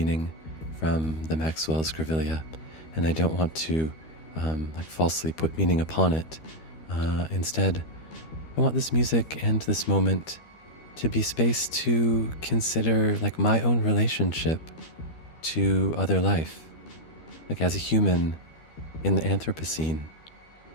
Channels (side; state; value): right; late; 13 ms